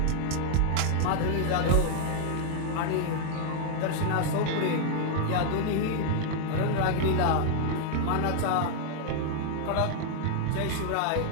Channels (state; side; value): different; both; correlation 0.00